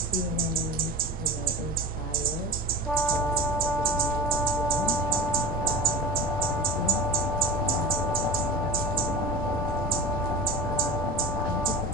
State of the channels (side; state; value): both; normal; correlation 0.32